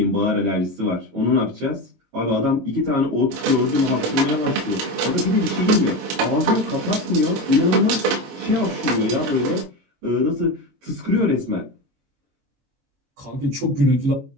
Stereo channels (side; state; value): left; late; 22 ms